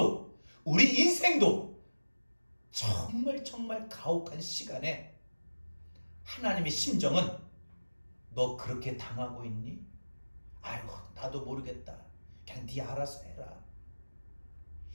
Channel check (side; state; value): both; inverted; correlation -1.00